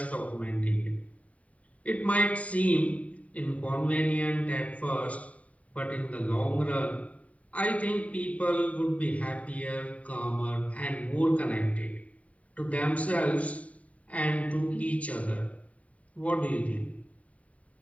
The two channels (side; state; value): right; late; 0.068 ms